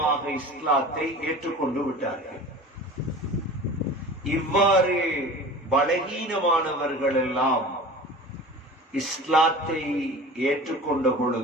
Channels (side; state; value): both; normal; correlation 0.38